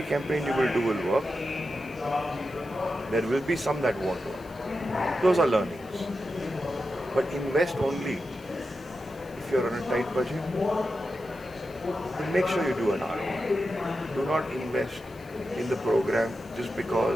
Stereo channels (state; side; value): noise; left; hiss, 26 dB below the sound